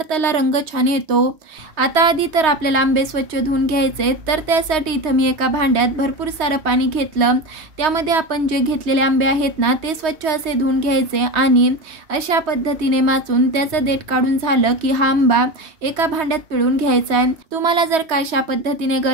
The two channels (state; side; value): late; left; 3.2 ms